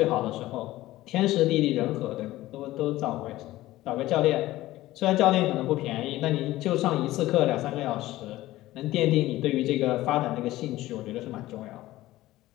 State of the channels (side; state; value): right; quieter; 16.5 dB